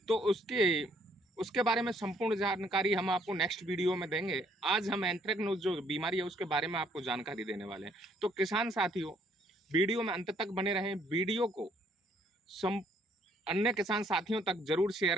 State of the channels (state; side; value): normal; both; correlation 0.65